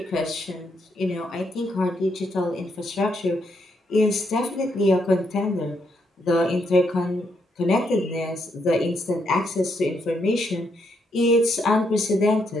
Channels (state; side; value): normal; both; correlation 0.77